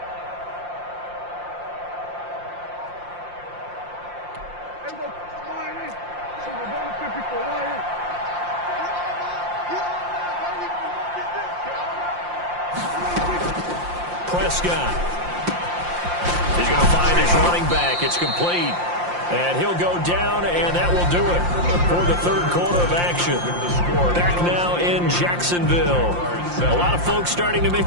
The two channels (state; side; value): late; left; 5.7 ms